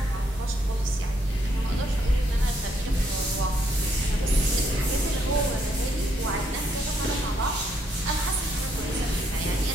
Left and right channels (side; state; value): both; normal; correlation 0.73